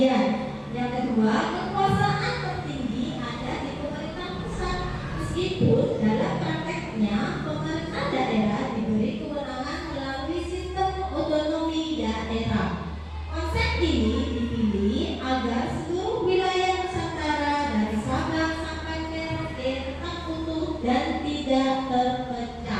Yang kedua, kekuasaan tertinggi ada di pemerintah pusat, meskipun dalam prakteknya pemerintah daerah diberi kewenangan melalui sistem otonomi daerah. Konsep ini dipilih agar seluruh wilayah Nusantara dari Sabang sampai Merauke tetap utuh dan tidak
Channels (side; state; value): both; identical; correlation 1.00